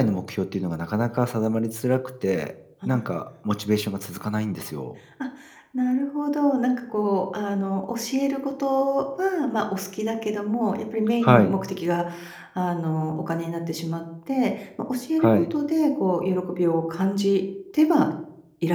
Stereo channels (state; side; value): identical; both; correlation 1.00